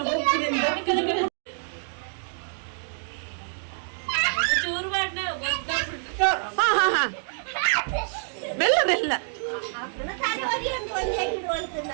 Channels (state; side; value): silent; left; digital silence